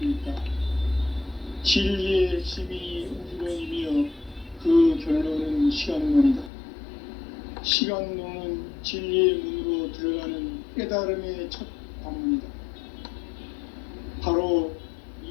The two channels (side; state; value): right; drops out; at 6.5 s